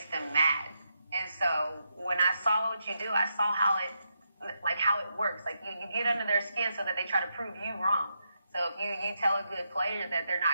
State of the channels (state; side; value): inverted; both; correlation -0.83